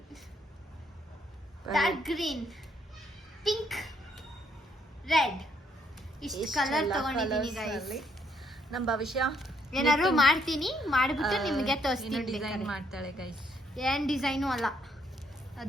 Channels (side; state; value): both; normal; correlation 0.71